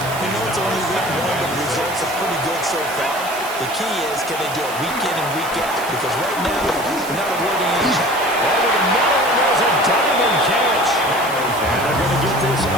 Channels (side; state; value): right; noise; hiss, 12 dB below the sound